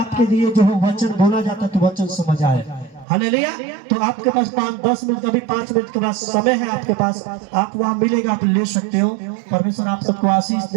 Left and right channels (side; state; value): left; drops out; at 3.1 s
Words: लिए जो है वचन बोला जाता है तो वचन समझ आए। हालेलुया। तो आपके पास 5-10 मिनट, कभी 5 मिनट के बाद समय है आपके पास, आप वहां मिलेगा, आप ले सकते हो। परमेश्वर आप सबको आशीष